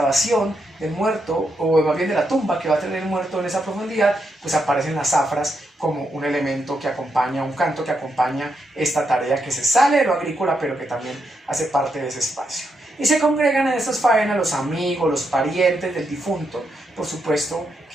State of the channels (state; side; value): normal; both; correlation 0.81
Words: del muerto, o más bien de la tumba que va a tener el muerto en esa profundidad, pues aparecen las zafras como un elemento que acompaña, un canto que acompaña esta tarea que se sale de lo agrícola, pero que también hace parte de ese espacio. Y se congregan en estas faenas los amigos, los parientes del difunto, por supuesto